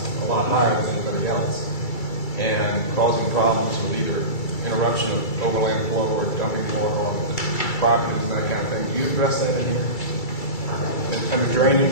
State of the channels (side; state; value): right; late; 2.3 ms